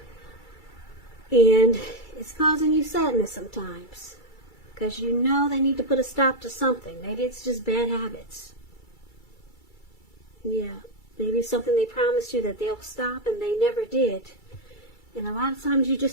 and it's causing you sadness sometimes, because you know they need to put a stop to something. Maybe it's just bad habits. Yeah, maybe something they promised you that they'll stop and they never did. And a lot of times you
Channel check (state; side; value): late; right; 2.3 ms